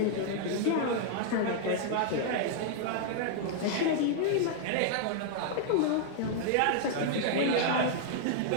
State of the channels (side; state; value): both; different; correlation 0.00